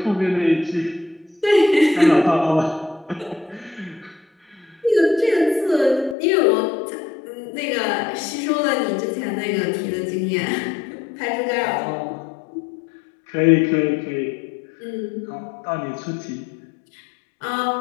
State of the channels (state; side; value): drops out; right; at 6.2 s